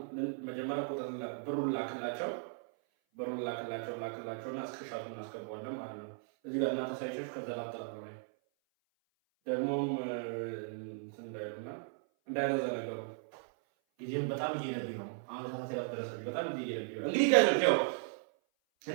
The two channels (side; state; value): left; silent; 53 dB below the other